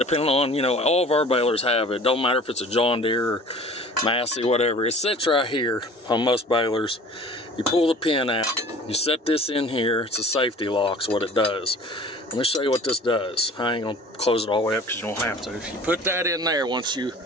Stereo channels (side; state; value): both; normal; correlation 0.45